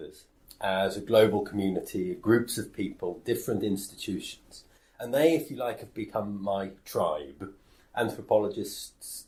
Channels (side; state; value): both; identical; correlation 1.00